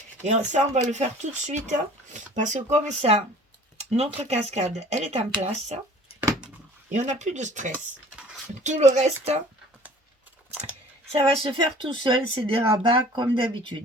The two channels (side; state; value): both; normal; correlation 0.49